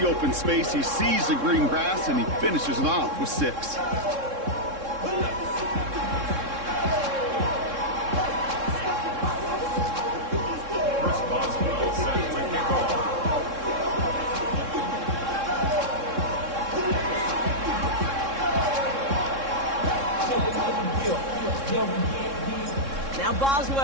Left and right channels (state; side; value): late; left; 3.7 ms